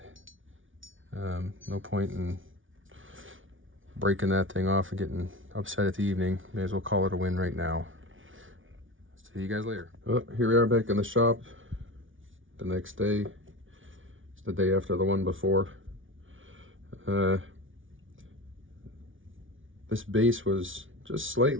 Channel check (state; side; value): late; left; 0.57 ms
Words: No point in breaking that thing off and getting upset at the evening. May as well call it a win right now. See you guys later. Oh, here we are back in the shop. The next day, it's the day after the one before. This base was just